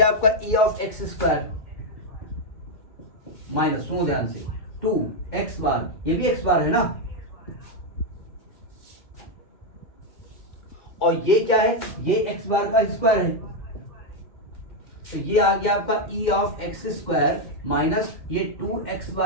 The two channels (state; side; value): late; right; 2.1 ms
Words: आपका ई ऑफ एक्स स्क्वायर माइनस, सुनो ध्यान से, 2 एक्स बार, ये भी एक्स बार है ना। और ये क्या है, ये एक्स बार का स्क्वायर है, तो ये आ गया आपका ई ऑफ एक्स स्क्वायर माइनस ये 2 एक्स